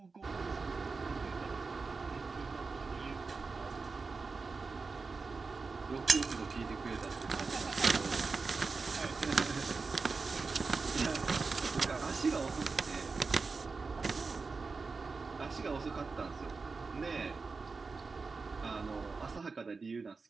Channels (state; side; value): quieter; left; 4.4 dB